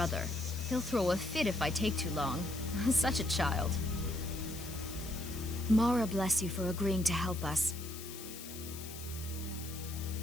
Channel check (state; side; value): noise; left; hiss, 12 dB below the sound